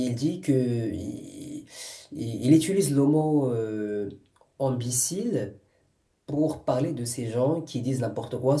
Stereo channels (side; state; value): both; identical; correlation 1.00